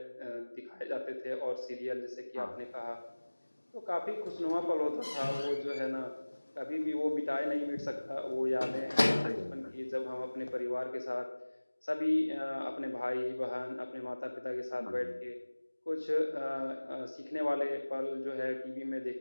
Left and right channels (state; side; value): inverted; both; correlation -1.00